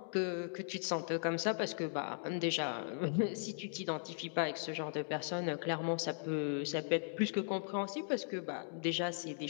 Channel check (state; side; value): silent; right; digital silence